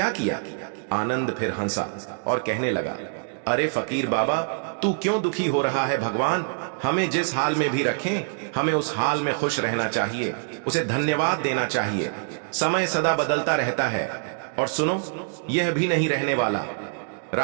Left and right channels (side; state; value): left; silent; digital silence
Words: किया? आनंद फिर हंसा और कहने लगा, अरे फकीर बाबा, तू क्यों दुखी हो रहा है? भगवान हमें जिस हाल में भी रखें, हमें उस हाल में खुश रहना चाहिए, उसे धन्यवाद देना चाहिए। समय सदा बदलता रहता है और सुनो, यह भी नहीं रहने वाला।